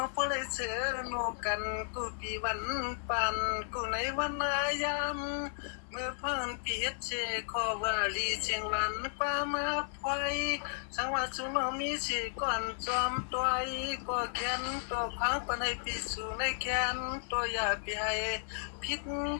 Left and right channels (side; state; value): right; silent; digital silence